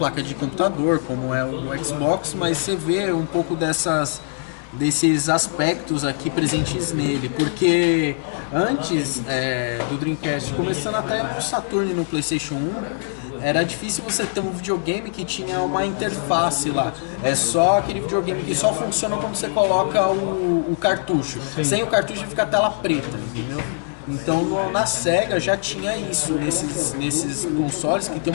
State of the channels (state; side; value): silent; right; 64 dB below the other